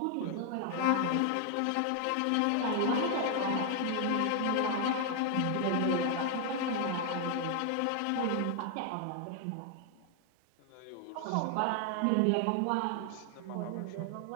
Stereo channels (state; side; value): different; both; correlation 0.00